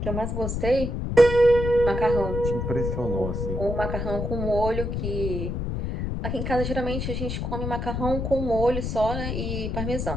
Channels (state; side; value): noise; left; rumble, 3 dB below the sound